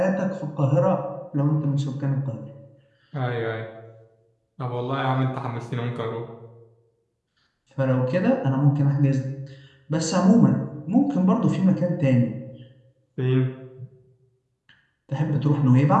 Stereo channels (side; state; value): both; identical; correlation 1.00